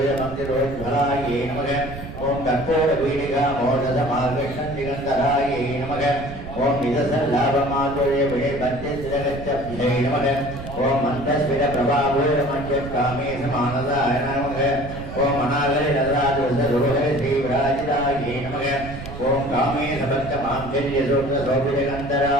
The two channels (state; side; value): noise; right; rumble, 11 dB below the sound